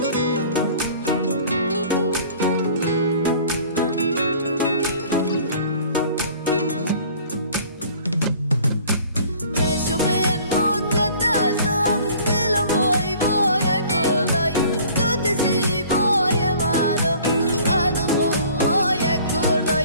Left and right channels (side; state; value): both; inverted; correlation -0.50